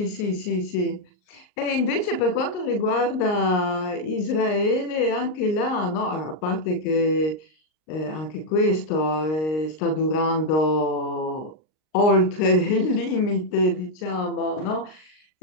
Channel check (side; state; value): right; late; 39 ms